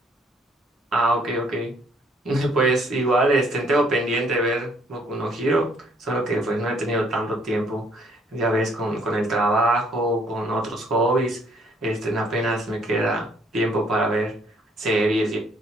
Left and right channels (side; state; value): both; normal; correlation 0.64